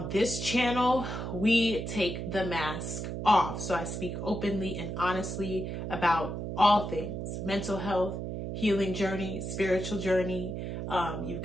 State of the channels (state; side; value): noise; right; hum, 5 dB below the sound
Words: this channel, we take the mask off. So I speak openly and honestly about all things: mental health, healing journey, spiritual journey. You've